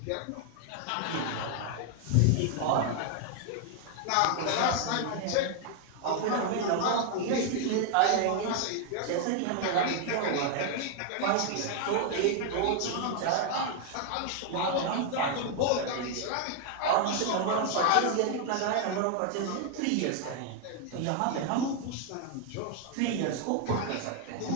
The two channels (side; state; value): both; different; correlation 0.00